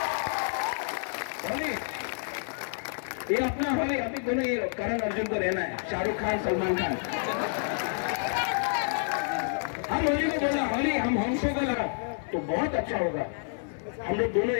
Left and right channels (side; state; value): right; silent; 59 dB below the other